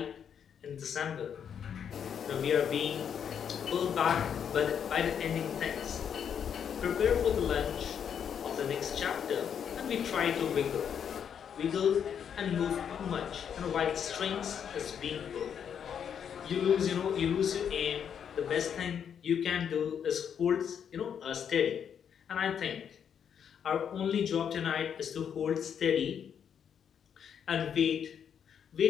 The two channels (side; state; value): right; quieter; 8.0 dB